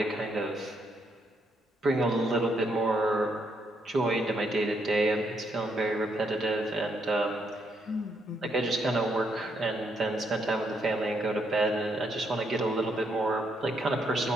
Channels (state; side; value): normal; both; correlation 0.76